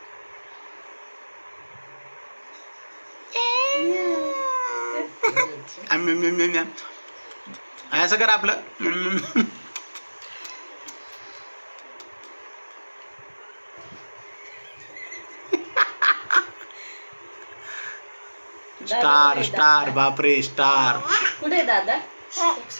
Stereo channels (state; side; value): inverted; both; correlation -1.00